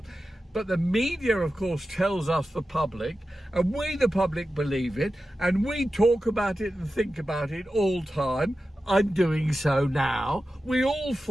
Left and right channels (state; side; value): normal; both; correlation 0.93